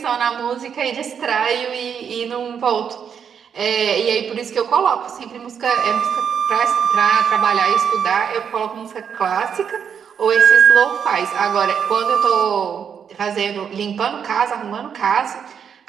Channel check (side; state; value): left; quieter; 7.5 dB